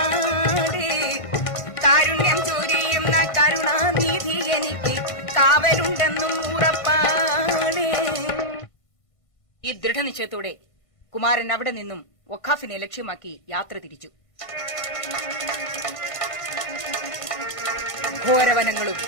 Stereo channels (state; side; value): late; right; 1.5 ms